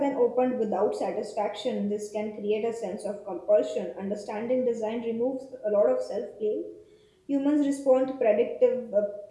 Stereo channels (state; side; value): identical; both; correlation 1.00